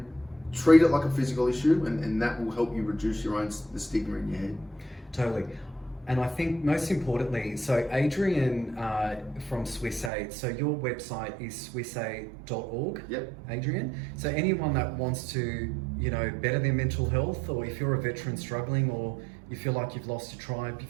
treat it like a physical issue, and that will help you reduce the stigma in your head. Totally. And I think most importantly, so Adrian from SwissAid, so your website is swissaid.org. Yep. Adrian. So anyone that wants to, better their mental health, or if you're a veteran struggling, or you feel like you've lost your tribe, you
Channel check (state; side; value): drops out; left; at 10.1 s